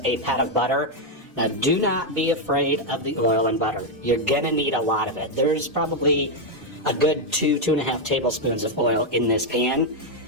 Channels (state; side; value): normal; both; correlation 0.02